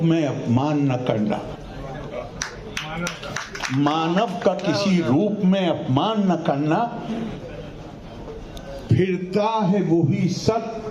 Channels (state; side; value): identical; both; correlation 1.00